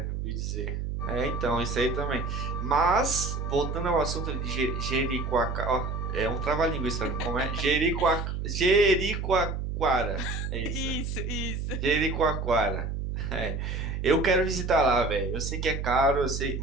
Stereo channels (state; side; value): noise; right; hum, 3 dB below the sound